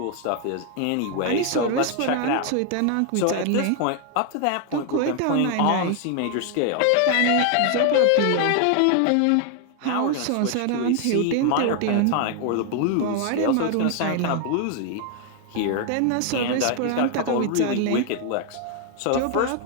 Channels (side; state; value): both; different; correlation 0.00